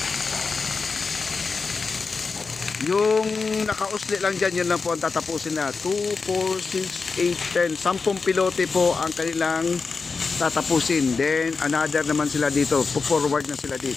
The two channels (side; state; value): right; quieter; 4.6 dB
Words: Yung nakausli lang dyan, yun lang po ang tatapusin na. 2, 4, 6, 8, 10. 10 pilote po ang kanilang tatapusin. Then another naman sila dito. Forward na sila